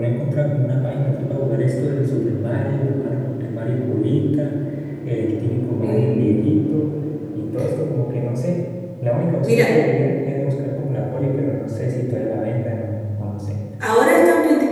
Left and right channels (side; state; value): both; identical; correlation 1.00